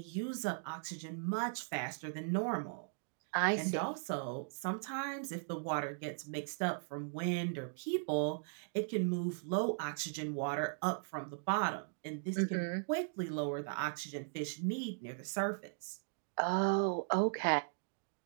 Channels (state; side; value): silent; left; digital silence